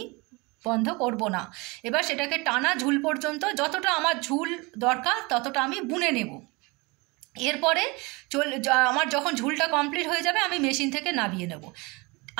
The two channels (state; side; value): quieter; left; 26.2 dB